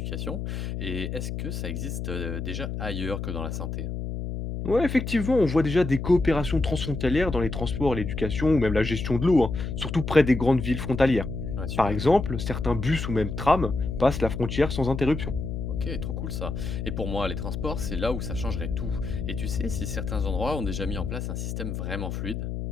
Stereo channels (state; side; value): noise; left; hum, 4 dB below the sound